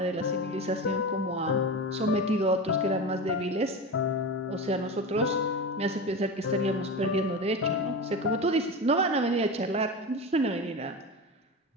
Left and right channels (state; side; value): normal; both; correlation 0.24